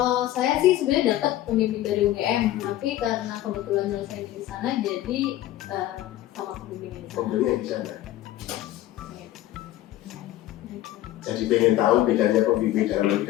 saya sih sebenarnya dapat pembimbing dari UGM, tapi karena kebetulan nyelesain di sana jadi sama pembimbing di sana. Pembimbing di sana. Jadi pengen tahu bedanya pembimbing dalam negeri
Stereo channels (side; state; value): right; quieter; 14.3 dB